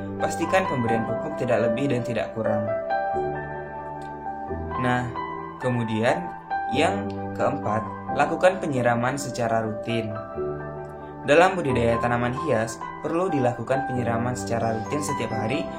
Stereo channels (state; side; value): identical; both; correlation 1.00